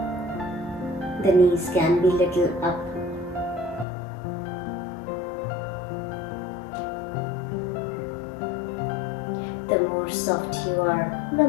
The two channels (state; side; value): drops out; right; at 3.9 s